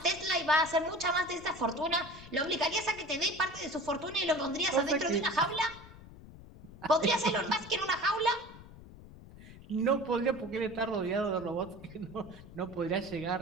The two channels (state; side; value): noise; left; rumble, 18 dB below the sound